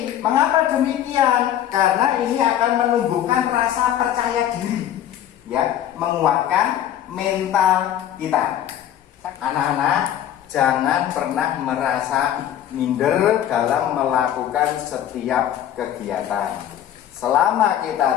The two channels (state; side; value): quieter; right; 11.0 dB